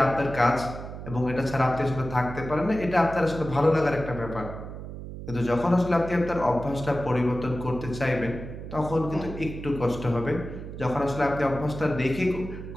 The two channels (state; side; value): noise; right; hum, 10 dB below the sound